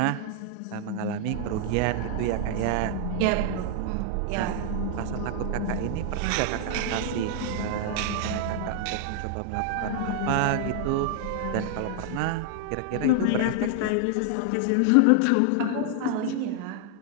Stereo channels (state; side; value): different; both; correlation 0.00